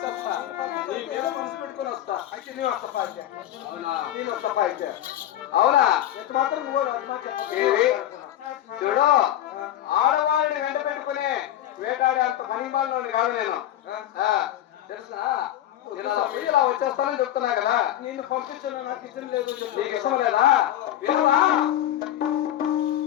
నీ మీద మనసు పెట్టుకుని వస్తా. అయితే నేను వస్తా. అవునా? నేను వస్తా. అయితే అవునా? ఎంత మాత్రం నువ్వు చూడు, ఆడవాళ్ళని వెంట పెట్టుకుని వేటాడే అంత పనిమాలని కాదు నేను. తెలుసా? ఇలా వచ్చేస్తానని చెప్తున్నా కదా. నేను పంపించాను, నాకు ఇష్టం లేదు. నీకు ఇష్టం లేదా?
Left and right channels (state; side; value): quieter; right; 12.4 dB